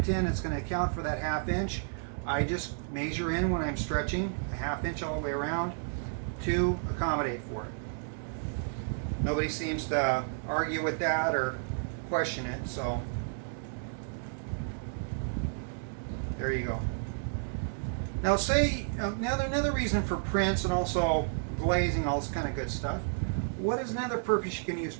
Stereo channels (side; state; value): left; silent; digital silence